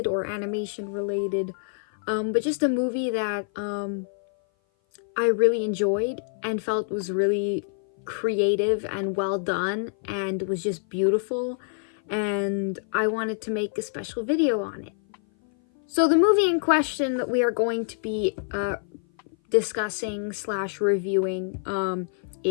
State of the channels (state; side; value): silent; right; 57 dB below the other